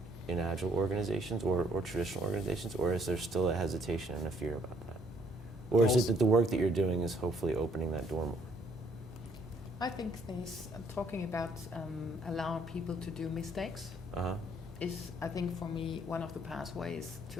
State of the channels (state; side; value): normal; both; correlation 0.65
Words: in Agile organizations or traditional organizations, or is there still a hesitation and a fear about that? Or is it that the work that you're doing is hopefully opening that door more? I think this talking about allowing people to do mistakes is, I think, for me, one of the pathways